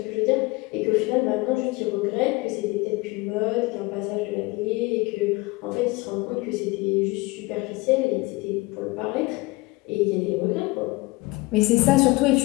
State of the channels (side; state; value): right; quieter; 22.9 dB